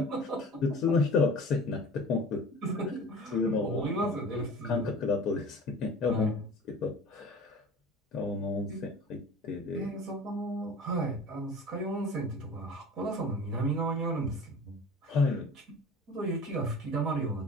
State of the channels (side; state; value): both; normal; correlation 0.40